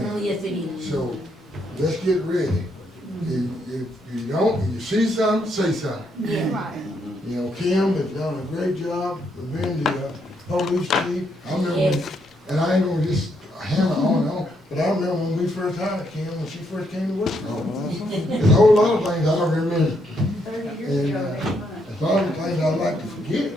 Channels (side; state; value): both; normal; correlation 0.75